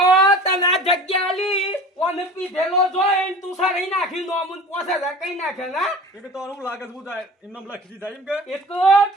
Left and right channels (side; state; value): both; normal; correlation 0.40